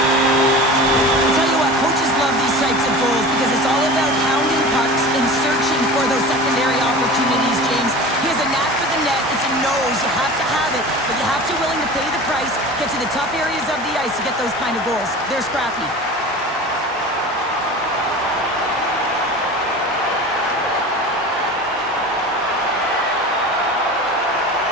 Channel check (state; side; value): normal; both; correlation 0.35